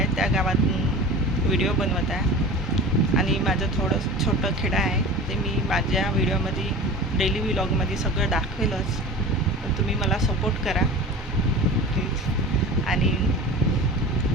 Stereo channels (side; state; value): both; normal; correlation 0.35